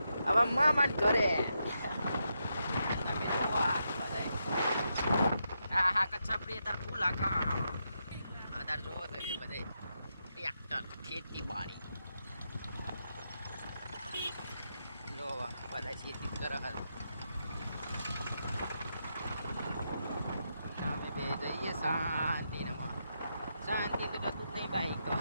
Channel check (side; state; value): both; inverted; correlation -0.83